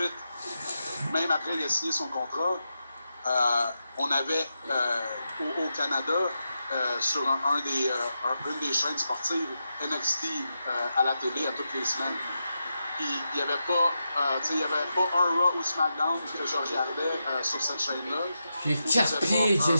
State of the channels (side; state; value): both; inverted; correlation -0.87